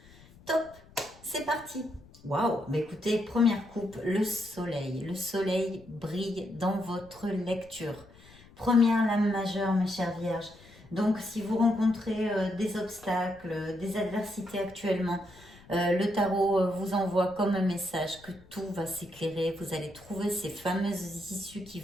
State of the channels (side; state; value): left; noise; rumble, 24 dB below the sound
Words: Top, c'est parti. Waouh, bah écoutez, première coupe, le soleil. Le soleil brille dans votre lecture. Première lame majeure, mes chères Vierges. Donc, si vous rencontrez des obstacles, des adversités actuellement, le tarot vous envoie comme un message que tout va s'éclairer. Vous allez trouver ces fameuses issues qui